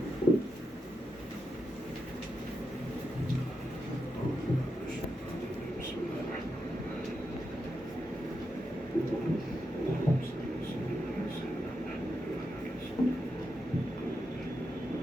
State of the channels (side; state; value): both; normal; correlation 0.86